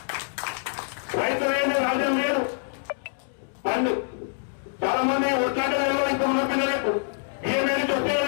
రైతు అనేది రాజ్యం లేదు. పండు చాలా మంది వచ్చాక తెలియదు, ఇంకా ఉన్న పిల్లలకు బియ్యం ఏది చూస్తే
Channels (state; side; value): silent; right; digital silence